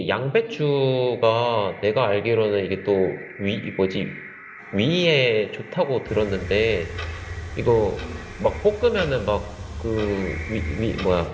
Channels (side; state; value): both; identical; correlation 1.00